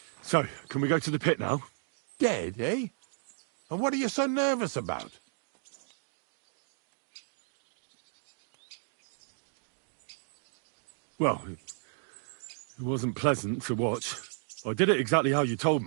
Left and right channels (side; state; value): left; silent; digital silence